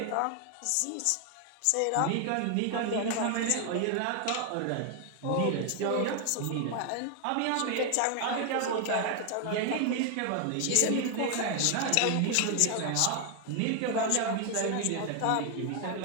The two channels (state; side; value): different; both; correlation 0.00